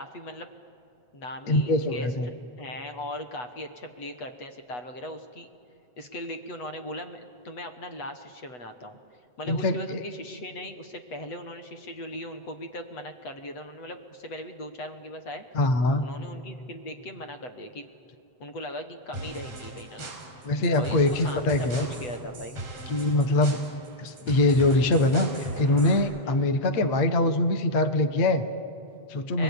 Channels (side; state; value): right; late; 8.0 ms